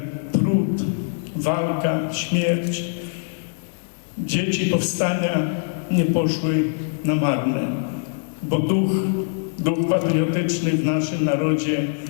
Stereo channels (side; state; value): right; silent; digital silence